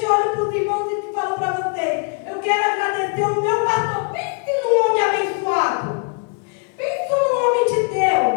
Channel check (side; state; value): right; quieter; 36.4 dB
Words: eu olho para os irmãos e falo para vocês: eu quero agradecer o meu pastor. Pense num homem abençoado. Pense num homem de